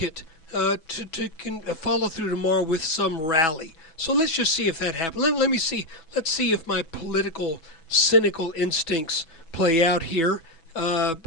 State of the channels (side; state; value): right; late; 6.1 ms